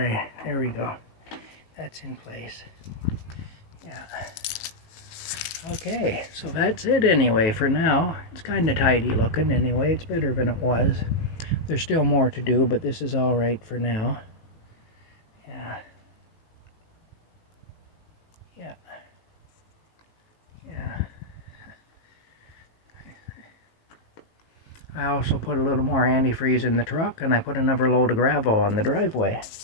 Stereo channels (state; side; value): late; right; 18 ms